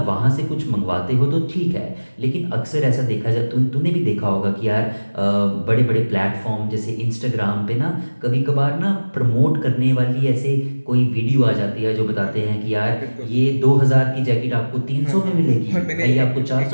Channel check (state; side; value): inverted; both; correlation -1.00